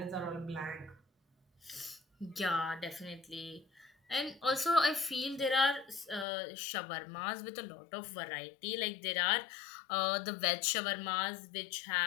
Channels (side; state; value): right; drops out; at 6.2 s